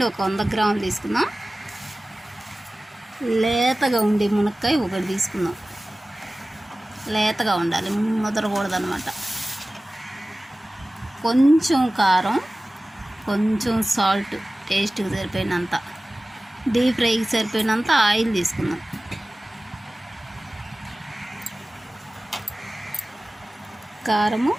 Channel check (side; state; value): both; normal; correlation 0.97